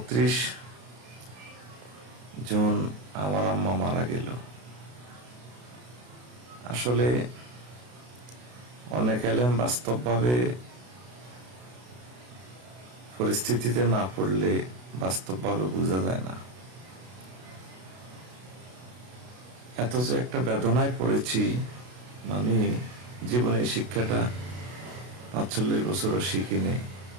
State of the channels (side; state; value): left; late; 32 ms